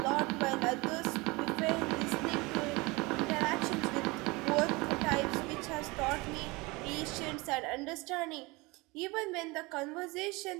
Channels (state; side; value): quieter; left; 24.3 dB